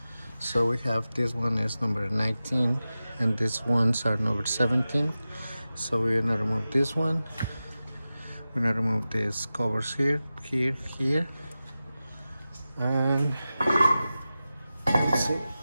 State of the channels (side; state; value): both; inverted; correlation -0.94